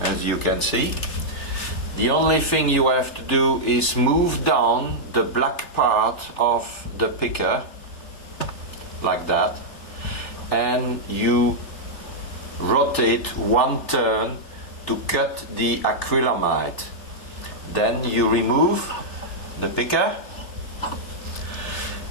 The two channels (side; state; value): right; late; 3.3 ms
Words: you can see. The only thing you have to do is move down the black part of the picker like that, and you rotate one turn to cut the acrylamide. Then you remove the picker